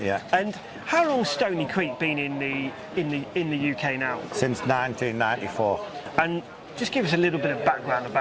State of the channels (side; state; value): both; identical; correlation 1.00